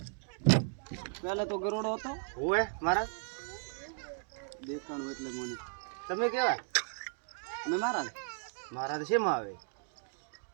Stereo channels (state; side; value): silent; left; 54 dB below the other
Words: પહેલા તો ગરોડો હતો હોય મારા. દેખાણું એટલે મને તમે કેવા અમે મારા મારા તો શેમાં આવે?